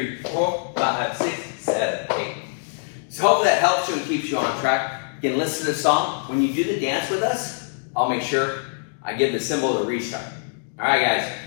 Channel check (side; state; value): right; silent; digital silence